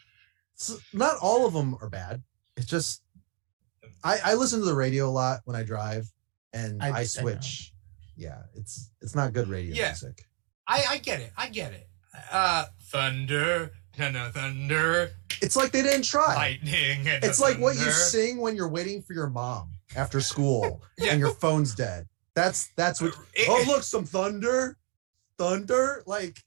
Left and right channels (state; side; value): quieter; left; 38.1 dB